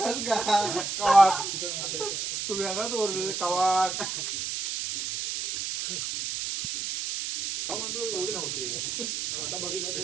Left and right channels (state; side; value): noise; right; hiss, 3 dB below the sound